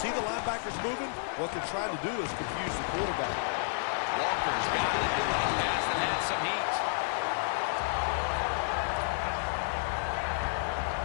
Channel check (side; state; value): right; silent; 57 dB below the other